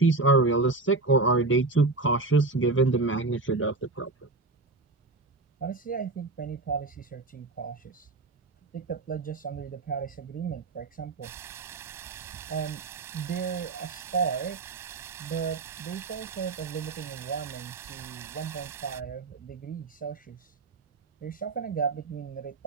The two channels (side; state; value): left; quieter; 3.5 dB